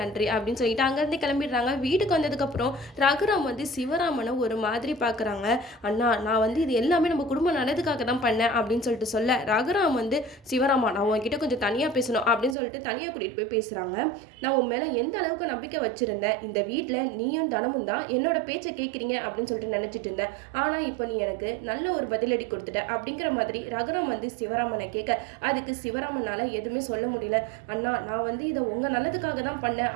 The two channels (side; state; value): left; drops out; at 12.6 s